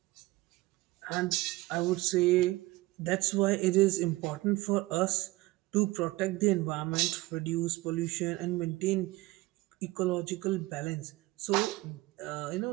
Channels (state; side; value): quieter; left; 19.8 dB